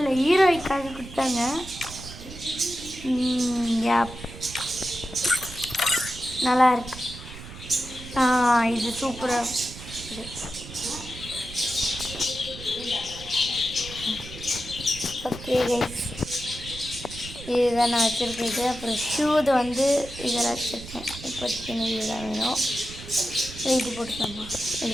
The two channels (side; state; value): right; noise; rumble, 13 dB below the sound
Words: ஹீரோய்க்காக கொடுத்தாங்க. நல்லா இருக்கு. இது சூப்பராக இது. ஓகே கைஸ், இதுதான் நான் வச்சுருக்கேன். அப்புறம் ஷூது இதெல்லாம் வச்சுருக்கேன். இப்போதைக்கு இதுதான் வேணும். இது போட்டுக்கோங்க,